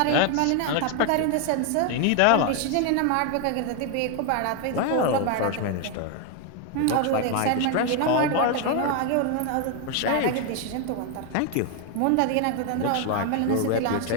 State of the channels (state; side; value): different; both; correlation 0.01